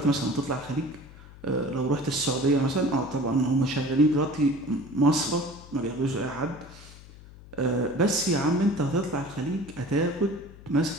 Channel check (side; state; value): left; noise; hum, 19 dB below the sound